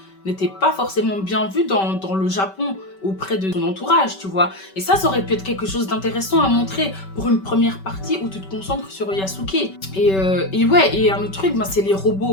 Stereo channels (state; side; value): late; right; 5.2 ms